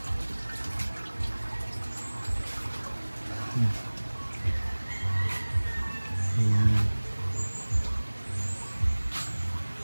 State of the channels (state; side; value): inverted; both; correlation -1.00